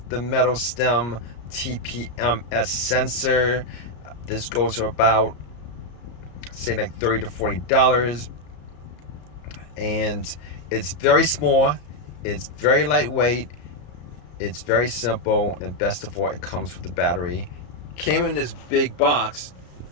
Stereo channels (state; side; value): late; right; 34 ms